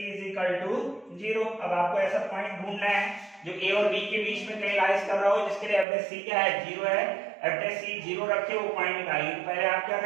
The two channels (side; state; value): left; drops out; at 5.9 s